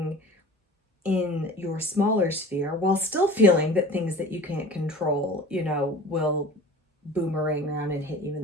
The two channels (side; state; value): both; normal; correlation 0.40